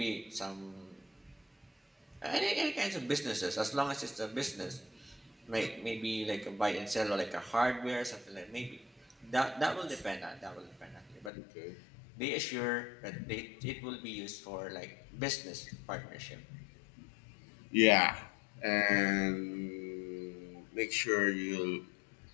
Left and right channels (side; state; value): right; drops out; at 11.3 s